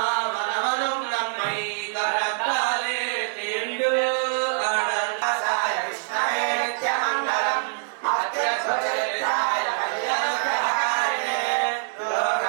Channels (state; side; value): silent; left; 62 dB below the other